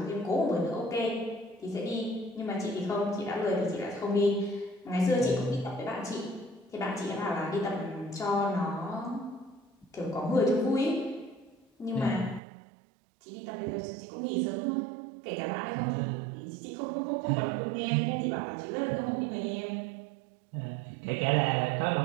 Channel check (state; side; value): drops out; left; at 12.4 s